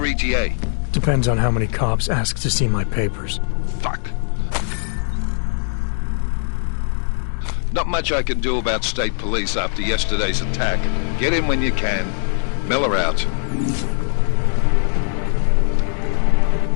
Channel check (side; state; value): right; silent; digital silence